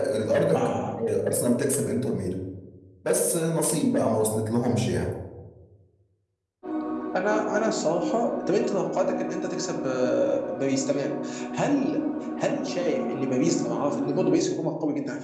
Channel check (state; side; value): identical; both; correlation 1.00